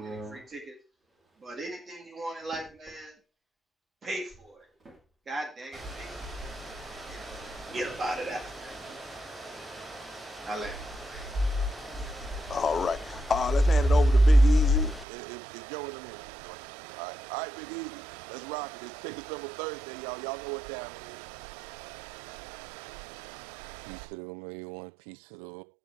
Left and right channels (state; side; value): drops out; left; at 15.1 s